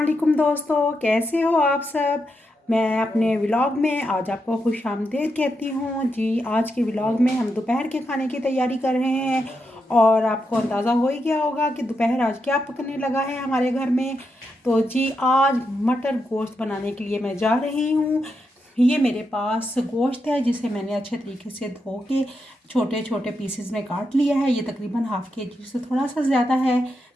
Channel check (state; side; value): normal; both; correlation 0.84